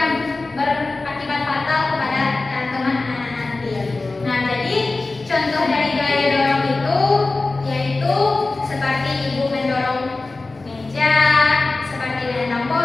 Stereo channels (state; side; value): quieter; right; 3.4 dB